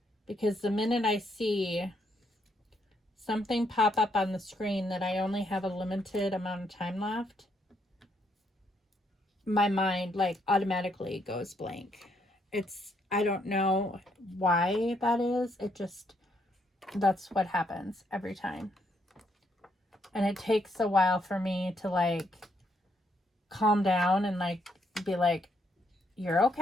Because the minute I see something pop up on the screen that I only have a limited amount of time left, my mind like automatically goes blank. I don't know why that is. That's what happens every time. And it takes a while for me to like calm down and like be like, you're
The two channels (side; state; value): both; normal; correlation 0.74